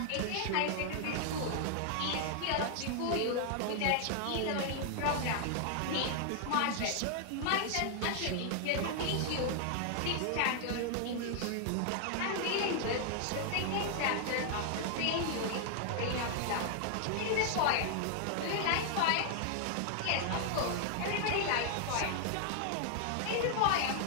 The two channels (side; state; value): both; different; correlation 0.00